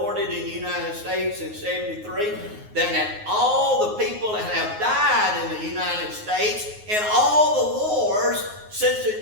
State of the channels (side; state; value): left; late; 9.5 ms